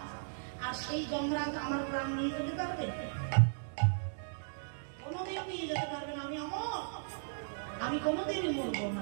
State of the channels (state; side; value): silent; left; digital silence